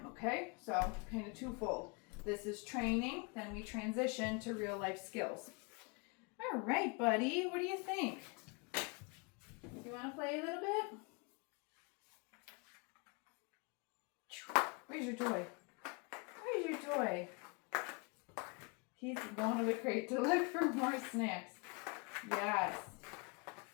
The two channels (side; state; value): right; quieter; 31.9 dB